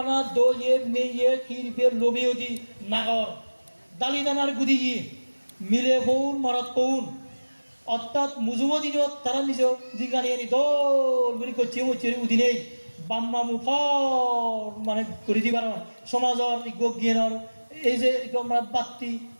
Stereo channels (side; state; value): both; inverted; correlation -1.00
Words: দইয়ে মেয়ে খিরবে লবিও দি নাগর দালিদানার গুদি গিয়ে মিলে ফৌন মরত পৌন অর্থাৎ মুজুমো দিনত তারা নিজ জিজ্ঞানিয়ে নি দল বুলি করছে উদিনেই বাম্মা মুফর মানে করে দিবার সমাজর জ্ঞানর এই যে আমরা বাত্তি